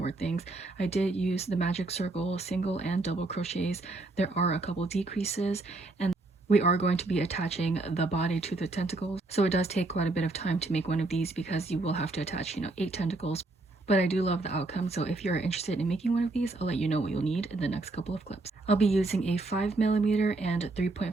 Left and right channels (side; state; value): left; quieter; 3.2 dB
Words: things. I did use the magic circle single and double crochets. There are a couple decreases, and we are going to be attaching the body to the tentacles, so it does take quite a bit of time to make one of these because you will have to attach, you know, 8 tentacles. But I do love the outcome, so if you're interested in making one of these, I'll let you know what you'll need in the next couple of clips. I'll be using a 5mm and